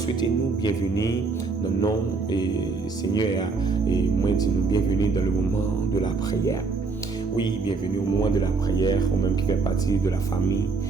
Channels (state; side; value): quieter; left; 4.3 dB